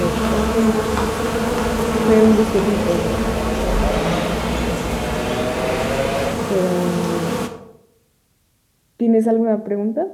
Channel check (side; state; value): both; identical; correlation 1.00